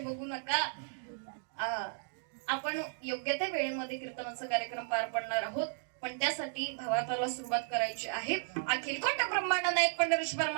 नका. आपण योग्य त्या वेळेमध्ये कीर्तनाचा कार्यक्रम पार पडणार आहोत. पण त्यासाठी भावार्थाला सुरुवात करायची आहे. अखिल कोट ब्रह्मांड नायक पंढरीश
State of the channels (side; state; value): left; silent; digital silence